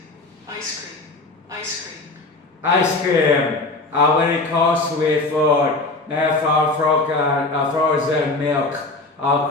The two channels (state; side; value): quieter; right; 3.1 dB